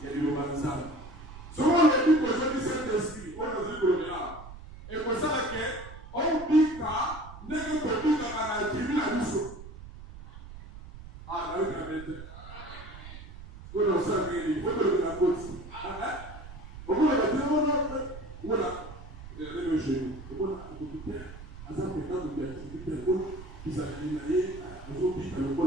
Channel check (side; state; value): right; noise; rumble, 14 dB below the sound